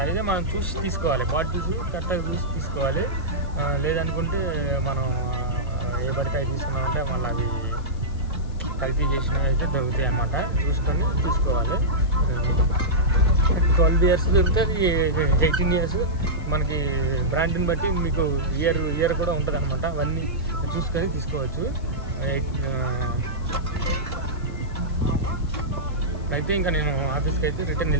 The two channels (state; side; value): noise; left; hiss, 28 dB below the sound